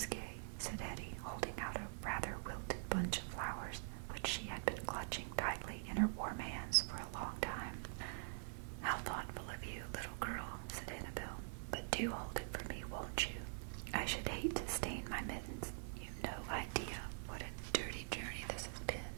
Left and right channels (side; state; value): left; silent; digital silence